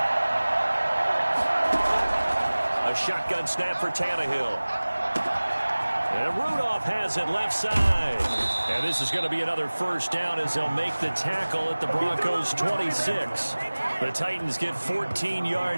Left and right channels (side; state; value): both; inverted; correlation -1.00